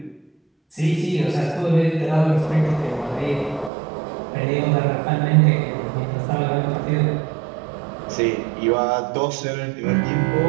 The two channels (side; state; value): left; drops out; at 3.7 s